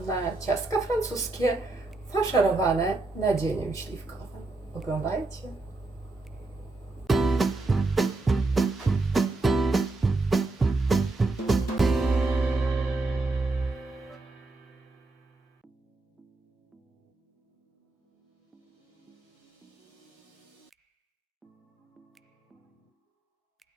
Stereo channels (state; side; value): quieter; left; 3.3 dB